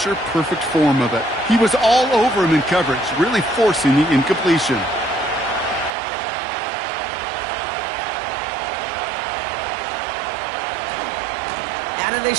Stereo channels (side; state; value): left; drops out; at 5.9 s